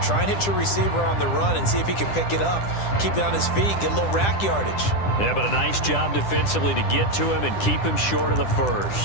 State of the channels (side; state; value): right; late; 10 ms